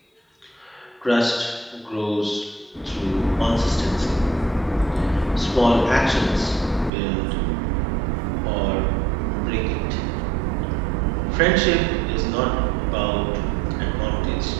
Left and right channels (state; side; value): drops out; left; at 6.9 s